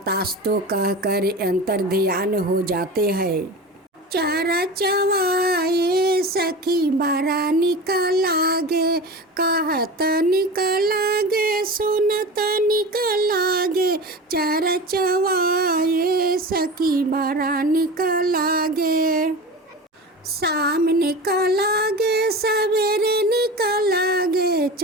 कहकर अंतर ध्यान हो जाते हैं। चारा चवाए सखी बारा निकलागे, कहत निकलागे सुनत निकलागे। चारा चवाए सखी बारा निकलागे, शाम निकलागे सवेरे निकलागे।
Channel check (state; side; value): normal; both; correlation 0.31